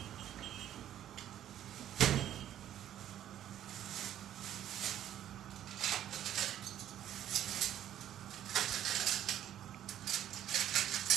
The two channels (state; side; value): quieter; left; 11.5 dB